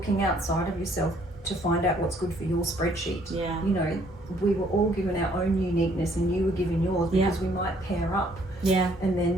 outside of yourself to find out what's good for your spreadsheet. You know, we were all given our own uniqueness, and you were given yours, because we might pair up. And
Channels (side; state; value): both; normal; correlation 0.63